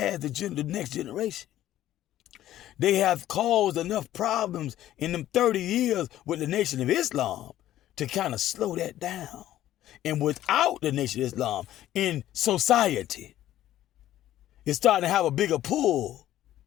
the next generation. They have caused enough problems in them 30 years with the Nation of Islam to kind of slow that down. And without the Nation of Islam in society, it's starting to have a bigger pull.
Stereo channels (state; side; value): quieter; right; 13.2 dB